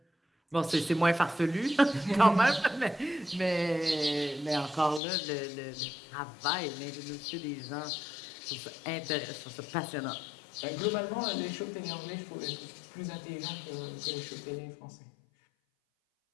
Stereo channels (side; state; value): right; drops out; at 5.0 s